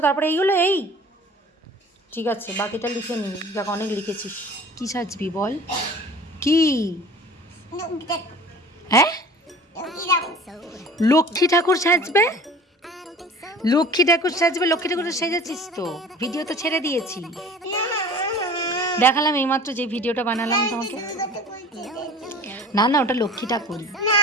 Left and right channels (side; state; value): both; normal; correlation 0.43